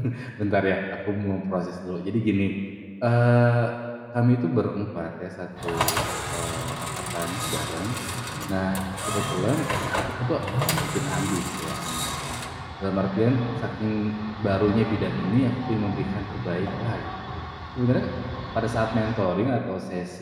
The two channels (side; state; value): both; identical; correlation 1.00